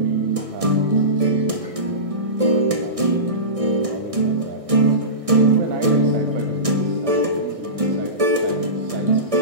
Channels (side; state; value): left; late; 1.6 ms